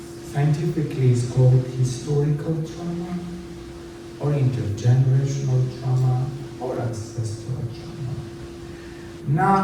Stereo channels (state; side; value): identical; both; correlation 1.00